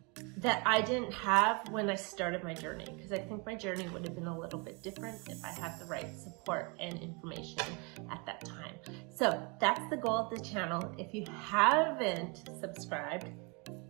that I didn't have when I started my journey, because I think my journey would have been a little bit different if I had the right support and information at that time. So that's the goal of the channel. If you haven't subscribed,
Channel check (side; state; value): left; quieter; 31.3 dB